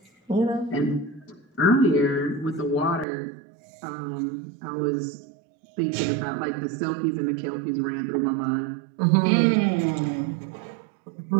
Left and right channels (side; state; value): left; drops out; at 3.1 s